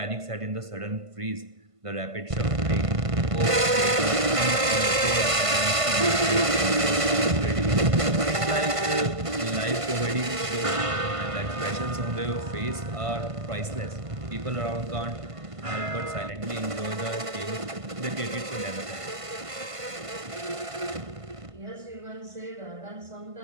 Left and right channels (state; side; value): late; left; 1.5 ms